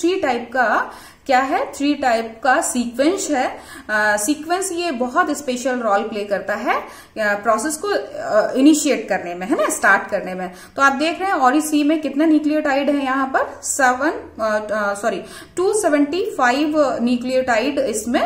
टाइप का क्या है? 3 टाइप का सीक्वेंस है। सीक्वेंस ये बहुत स्पेशल रोल प्ले करता है प्रोसेस को इनिशिएट करने में, है ना, स्टार्ट करने में। तो आप देख रहे हैं ओरी सी में कितना न्यूक्लियोटाइड है यहाँ पर? 275 न्यूक्लियोटाइड इसमें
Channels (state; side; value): identical; both; correlation 1.00